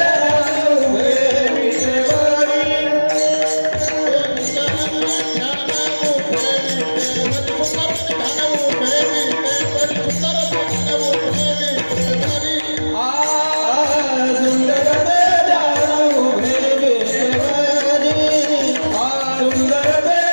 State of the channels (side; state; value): both; inverted; correlation -1.00